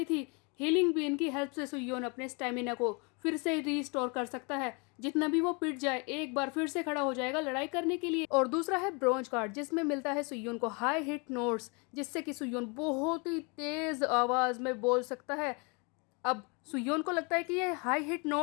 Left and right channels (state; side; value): quieter; right; 32.0 dB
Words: थी। हीलिंग बीन की हेल्प से सुयोन अपने स्टेमिना को फिर से रीस्टोर कर सकता है। जितना भी वो पिट जाए एक बार फिर से खड़ा हो जाएगा लड़ाई करने के लिए। और दूसरा है ब्रॉन्ज कार्ड, जिसमें मिलता है सुयोन को हाई हिट नोट्स, जिससे कि सुयोन बहुत ही तेज आवाज में बोल सकता है। अब सुयोन को लगता है कि ये हाई हिट